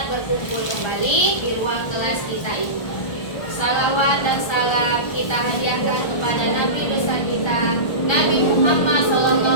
berkumpul kembali di ruang kelas kita ini. Salawat dan salam kita hadiahkan kepada Nabi besar kita, Nabi Muhammad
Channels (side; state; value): right; late; 1.3 ms